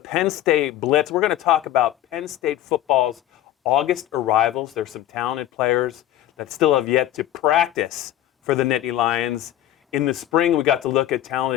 State Blitz, we're going to talk about Penn State football's August arrivals. There's some talented players that still have yet to practice for the Nittany Lions. In the spring, we got to look at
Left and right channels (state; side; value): quieter; right; 12.9 dB